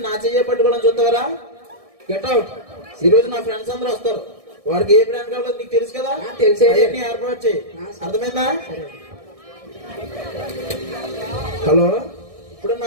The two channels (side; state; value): left; late; 1.6 ms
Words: నా చెయ్యి పట్టుకోవడం చూస్తావరా? Get out. ఈ రోజు నా ఫ్రెండ్స్ అందరూ వస్తారు, వారికి ఏ బ్రాండ్ కావాలో నీకు తెలుసు కదా. తెలిసే ఏర్పాటు చేయి. అర్థమైందా? హలో, ఇప్పుడు